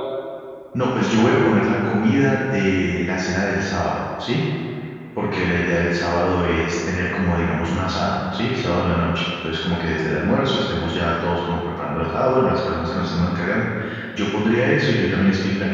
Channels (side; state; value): both; identical; correlation 1.00